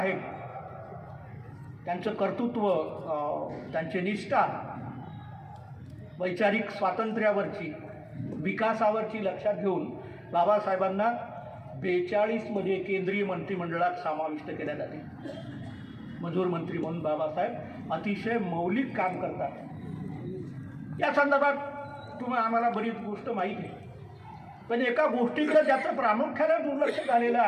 त्यांचं कर्तृत्व, त्यांची निष्ठा वैचारिक स्वातंत्र्यावरची, विकासावरची लक्षात घेऊन बाबासाहेबांना 42 मध्ये केंद्रीय मंत्रिमंडळात समाविष्ट केल्या जाते. मजूर मंत्री म्हणून बाबासाहेब अतिशय मौलिक काम करतात. या संदर्भात आम्हाला बरीच गोष्ट माहीत आहे, पण एका गोष्टीकडे ज्याचं प्रामुख्याने दुर्लक्ष झालेलं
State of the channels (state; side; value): identical; both; correlation 1.00